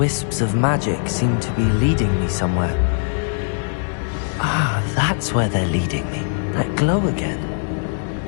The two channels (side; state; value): right; silent; digital silence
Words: of magic seem to be leading me somewhere. Ah, that's where they're leading me. That glow again.